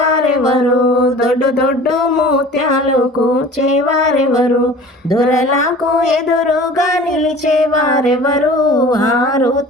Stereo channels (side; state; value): both; normal; correlation 0.43